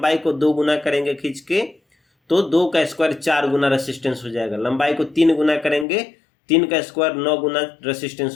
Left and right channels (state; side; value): drops out; right; at 5.9 s